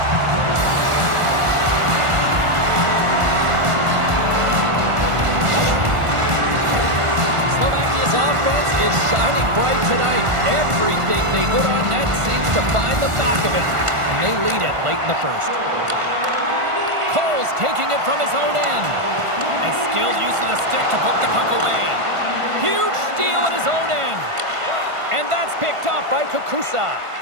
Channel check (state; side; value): late; left; 1.5 ms